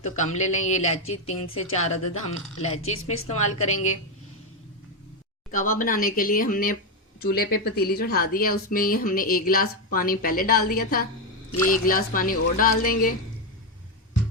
कम ले लें। ये इलायची 3 से 4 अदद हम इलायची इसमें इस्तेमाल करेंगे। कहवा बनाने के लिए हमने चूल्हे पे पतीली चढ़ा दी है, उसमें ये हमने 1 गिलास पानी पहले डाल दिया था। ये 1 गिलास पानी और डाल देंगे।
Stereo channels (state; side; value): normal; both; correlation 0.06